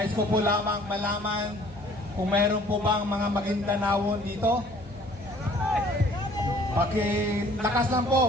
ko po lamang malaman kung meron po bang mga Maguindanaon dito. Pakilakas lang po,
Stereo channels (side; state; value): both; normal; correlation 0.55